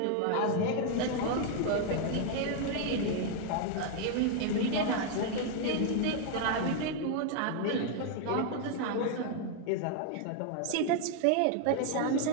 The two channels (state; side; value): different; both; correlation 0.00